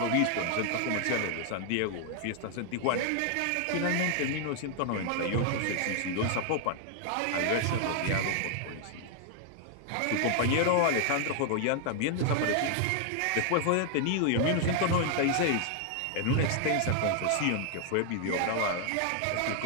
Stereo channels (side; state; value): both; different; correlation 0.00